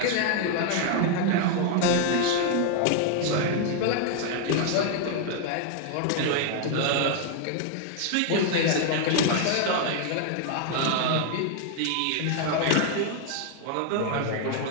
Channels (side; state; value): both; different; correlation 0.00